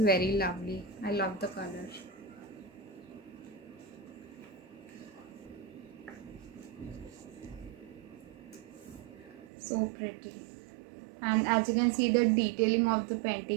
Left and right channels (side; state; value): left; drops out; at 9.5 s